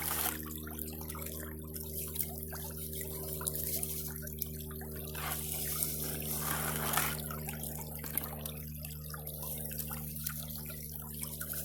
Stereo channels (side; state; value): both; identical; correlation 1.00